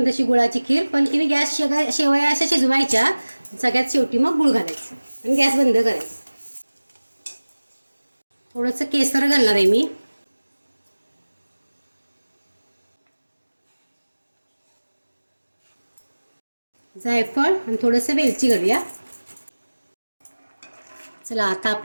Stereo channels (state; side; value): inverted; both; correlation -1.00